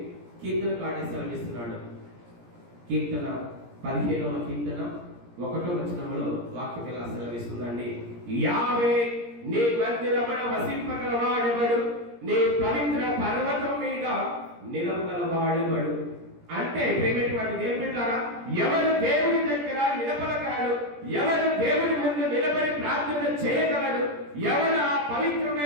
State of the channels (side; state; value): left; late; 17 ms